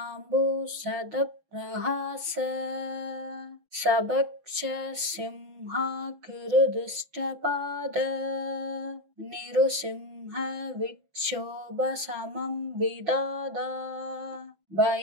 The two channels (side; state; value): left; late; 6.1 ms